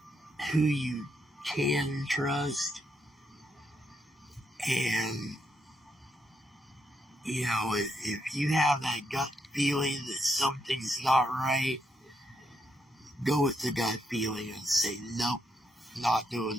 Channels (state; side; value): normal; both; correlation 0.79